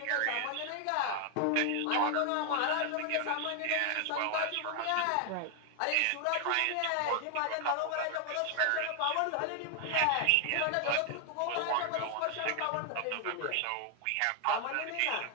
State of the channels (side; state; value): both; different; correlation 0.00